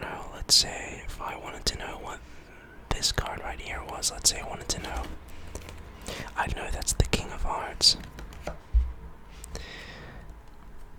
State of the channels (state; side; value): identical; both; correlation 1.00